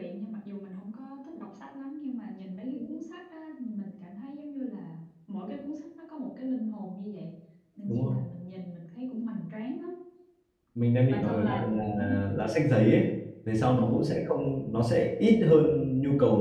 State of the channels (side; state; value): both; identical; correlation 1.00